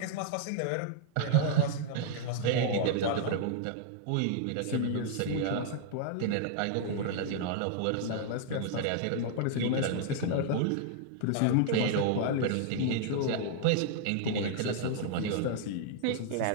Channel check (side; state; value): both; different; correlation -0.01